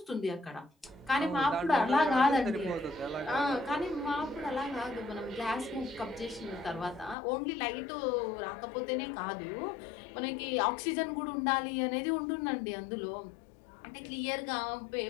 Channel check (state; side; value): drops out; right; at 7.2 s